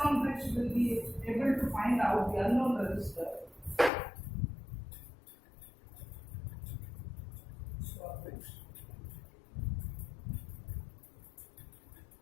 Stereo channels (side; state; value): right; drops out; at 3.9 s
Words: bridge will be able to find out the unknown resistor.